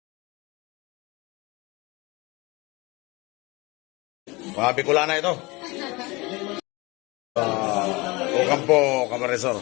Mga Bicolana ito. Ocampo, Camarines Sur.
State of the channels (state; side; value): quieter; right; 24.1 dB